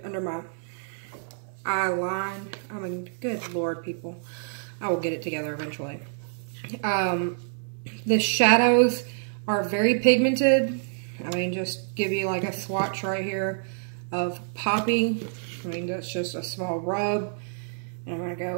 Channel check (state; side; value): silent; left; 60 dB below the other